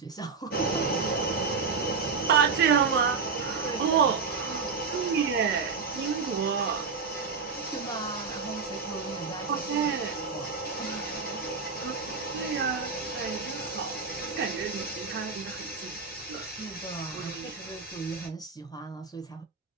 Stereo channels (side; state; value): left; quieter; 5.0 dB